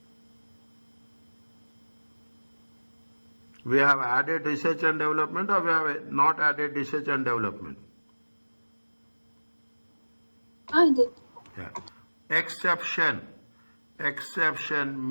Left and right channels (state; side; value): inverted; both; correlation -1.00